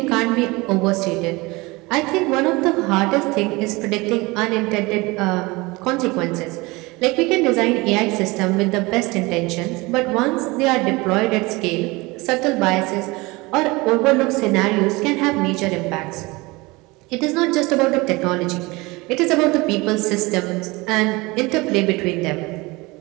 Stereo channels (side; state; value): left; quieter; 23.4 dB